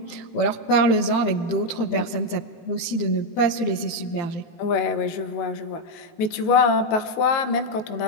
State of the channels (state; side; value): late; right; 18 ms